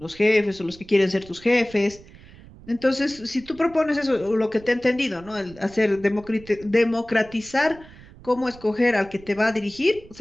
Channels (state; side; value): noise; right; rumble, 21 dB below the sound